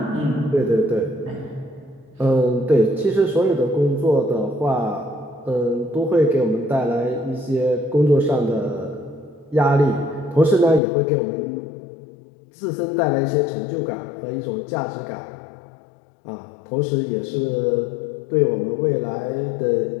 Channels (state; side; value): drops out; right; at 10.8 s